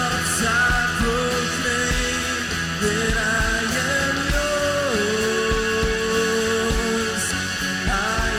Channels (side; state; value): both; identical; correlation 1.00